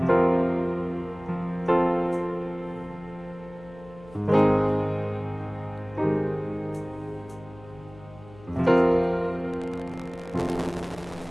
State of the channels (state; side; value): noise; left; hum, 21 dB below the sound